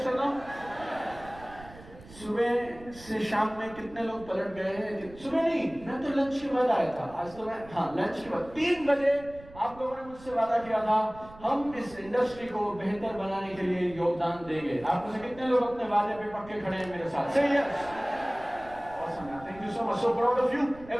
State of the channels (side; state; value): right; noise; rumble, 19 dB below the sound